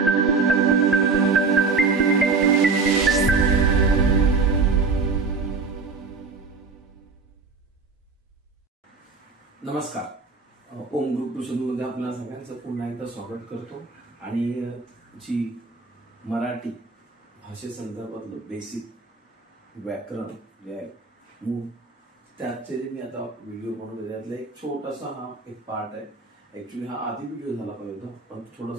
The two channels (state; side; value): quieter; left; 4.4 dB